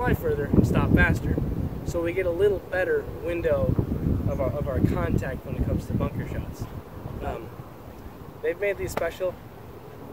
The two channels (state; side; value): identical; both; correlation 1.00